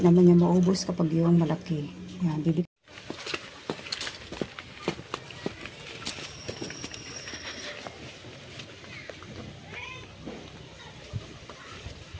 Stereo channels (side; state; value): both; identical; correlation 1.00